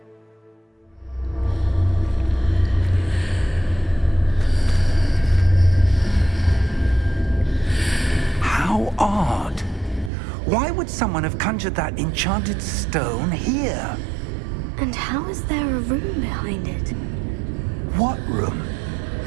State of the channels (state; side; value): drops out; left; at 10.1 s